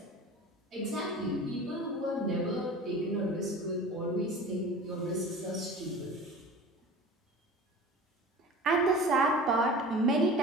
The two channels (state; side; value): normal; both; correlation 0.38